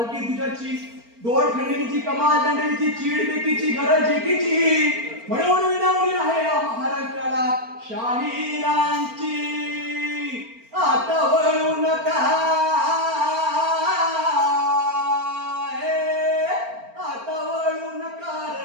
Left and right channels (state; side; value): late; left; 4.4 ms